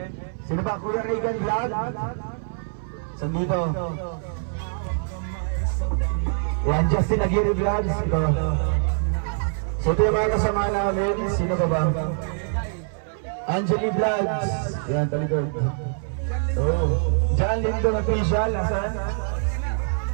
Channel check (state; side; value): silent; left; 62 dB below the other